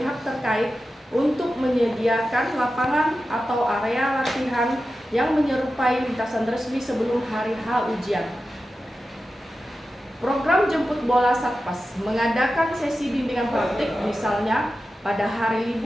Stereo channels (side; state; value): both; normal; correlation 0.92